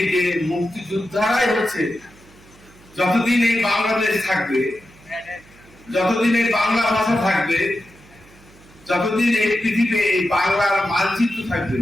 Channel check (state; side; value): noise; right; hum, 26 dB below the sound